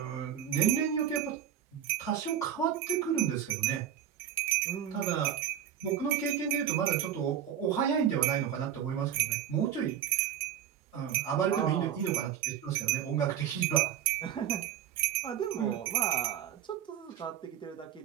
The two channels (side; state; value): left; quieter; 9.6 dB